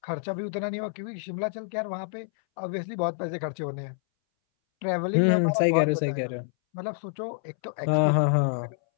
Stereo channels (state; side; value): silent; right; 60 dB below the other